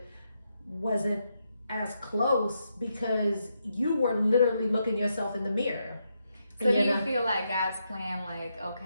wasn't as close, because you were literally looking yourself in the mirror. So do you feel like God's plan, like,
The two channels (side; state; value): both; inverted; correlation -0.81